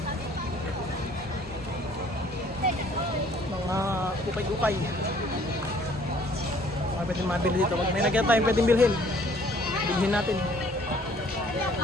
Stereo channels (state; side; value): normal; both; correlation 0.58